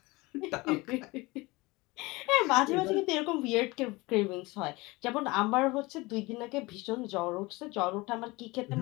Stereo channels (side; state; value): right; quieter; 22.8 dB